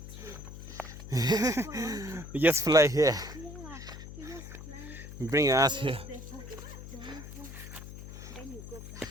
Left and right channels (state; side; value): noise; left; hum, 12 dB below the sound